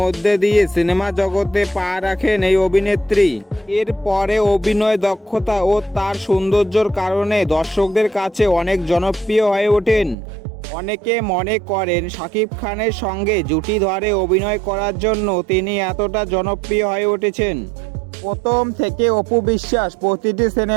দিয়ে সিনেমা জগতে পা রাখেন এই অভিনেত্রী। এরপরে অভিনয় দক্ষতা ও তার সৌন্দর্যের কারণে দর্শকদের কাছে অনেক জনপ্রিয় হয়ে ওঠেন। অনেকে মনে করেন শাকিব খানের সঙ্গে জুটি ধরে অভিনয় করার জন্য তিনি এতটা জনপ্রিয় হয়ে উঠেছেন। প্রথম থেকে অপু বিশ্বাস প্রতিটি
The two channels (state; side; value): drops out; left; at 10.2 s